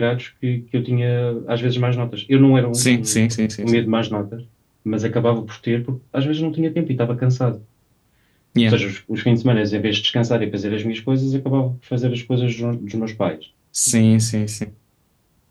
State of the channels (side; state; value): both; identical; correlation 1.00